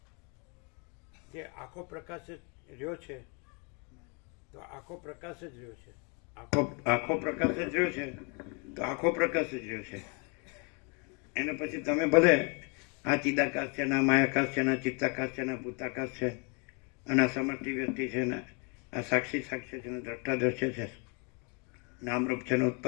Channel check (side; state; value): right; quieter; 33.9 dB